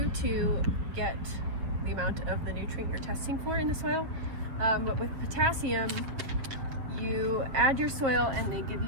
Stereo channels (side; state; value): left; late; 7.7 ms